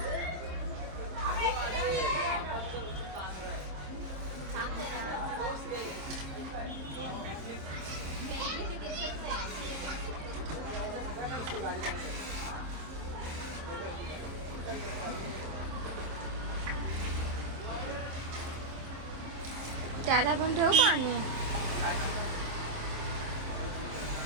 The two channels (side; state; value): left; late; 26 ms